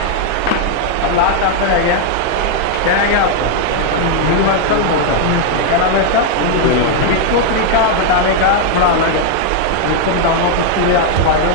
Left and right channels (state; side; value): different; both; correlation 0.00